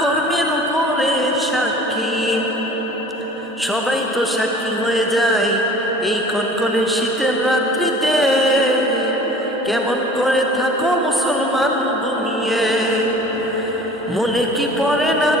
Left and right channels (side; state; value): both; normal; correlation 0.45